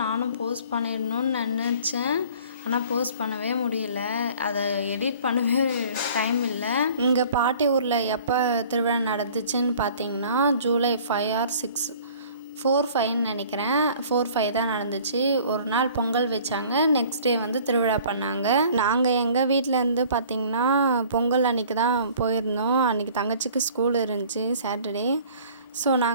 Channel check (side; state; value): both; inverted; correlation -0.50